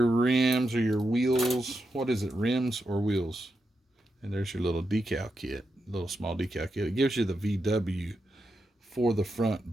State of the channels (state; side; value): normal; both; correlation 0.86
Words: or your wheels. What is it, rims or wheels? And there's your little decal kit, little small decal kit. It gives you the VW for the front